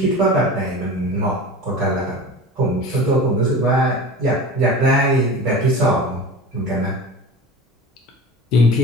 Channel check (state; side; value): normal; both; correlation 0.34